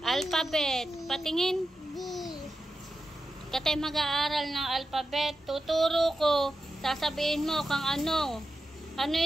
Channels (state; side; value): normal; both; correlation 0.91